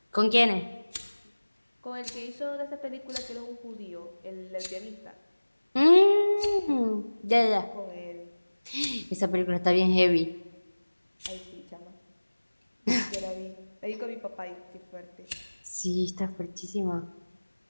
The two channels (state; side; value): inverted; both; correlation -1.00